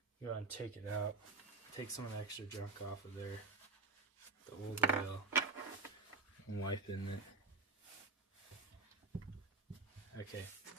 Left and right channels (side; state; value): left; quieter; 3.3 dB